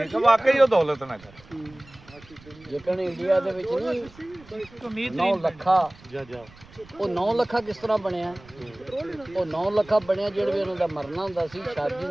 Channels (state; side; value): noise; right; rumble, 23 dB below the sound